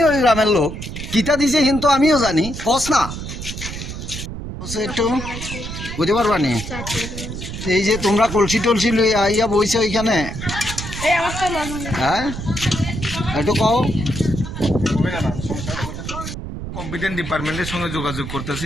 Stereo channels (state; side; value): noise; right; rumble, 8 dB below the sound